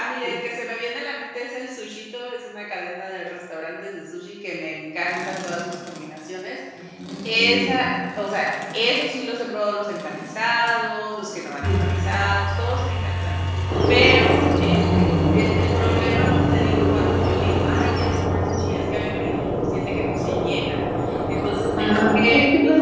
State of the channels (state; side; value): identical; both; correlation 1.00